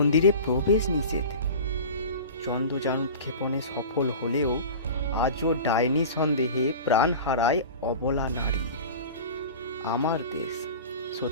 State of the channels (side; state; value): both; inverted; correlation -0.35